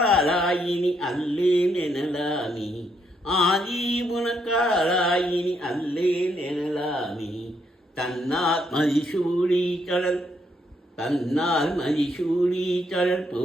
அல்லேன் எனலாமி. ஆதி உனக்காலாயினி அல்லேன் எனலாமி. தன்னார் மதிசூடி கடல் தன்னால் மதிசூடி கடல்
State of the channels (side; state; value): both; normal; correlation 0.75